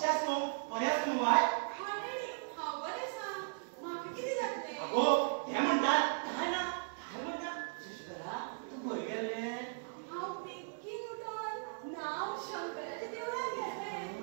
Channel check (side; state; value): left; silent; 53 dB below the other